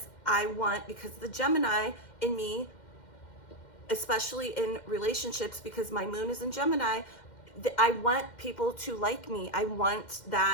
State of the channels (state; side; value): late; right; 2.1 ms